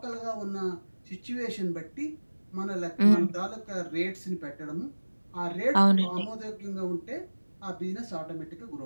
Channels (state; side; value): inverted; both; correlation -1.00